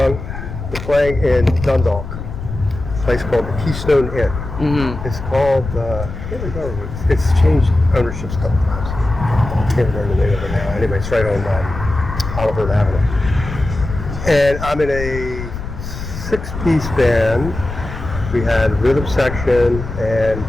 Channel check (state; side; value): noise; left; rumble, 8 dB below the sound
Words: We're playing in Dundalk, a place called the Keystone Inn. Mm-hmm. It's called. I can't remember. It's changed ownerships a couple times. I can't remember the name of it now. Anyway, it's right on Oliver Avenue. And I'm in a 6-piece band. We had a rhythm section and